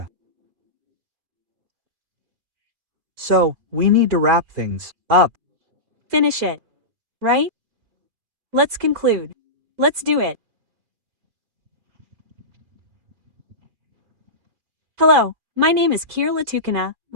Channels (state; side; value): late; left; 4.5 ms